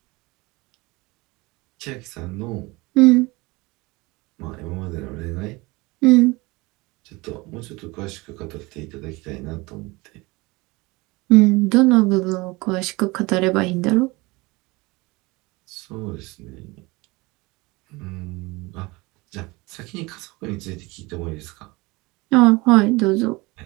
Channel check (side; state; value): left; quieter; 23.5 dB